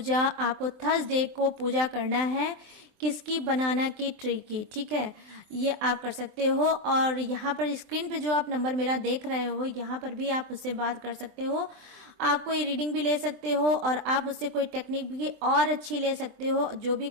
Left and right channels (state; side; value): late; left; 23 ms